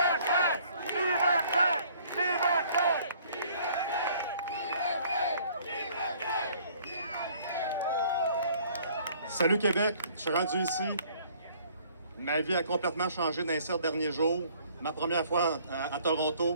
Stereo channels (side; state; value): both; inverted; correlation -0.58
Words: Salut Québec, je suis rendu ici. Ma vie a complètement changé dans les 7 derniers jours. Ma première fois à